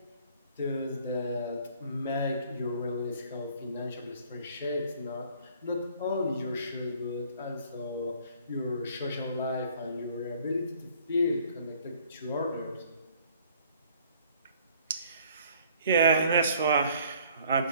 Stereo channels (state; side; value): inverted; both; correlation -0.58